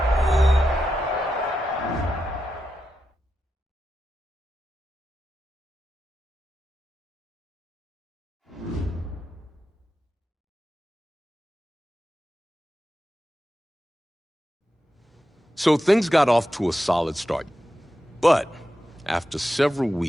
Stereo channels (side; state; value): both; normal; correlation 0.89